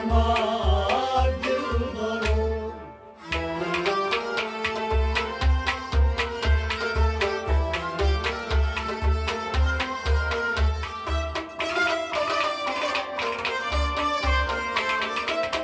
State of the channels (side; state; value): both; identical; correlation 1.00